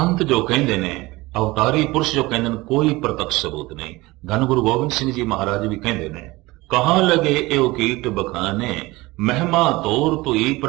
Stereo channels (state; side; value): quieter; left; 20.9 dB